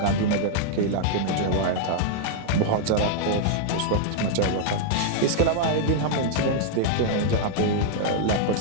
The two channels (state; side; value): different; both; correlation -0.01